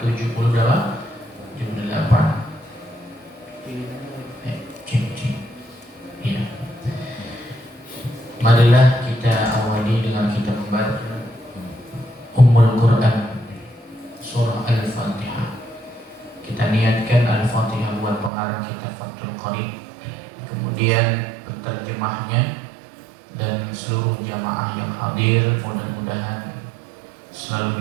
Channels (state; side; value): drops out; left; at 18.3 s